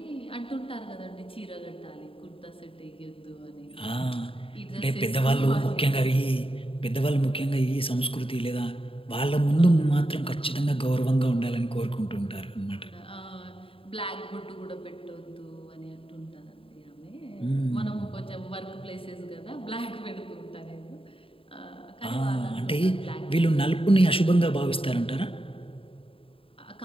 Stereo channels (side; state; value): right; late; 0.26 ms